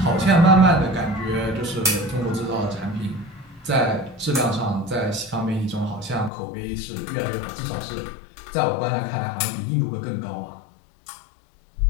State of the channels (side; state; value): right; drops out; at 6.3 s